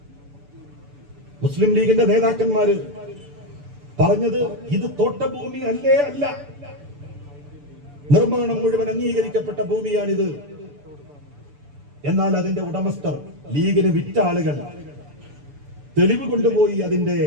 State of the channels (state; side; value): late; left; 6.9 ms